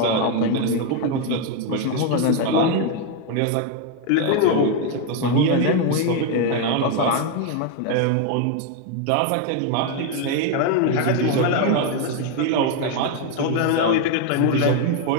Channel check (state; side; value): different; both; correlation 0.01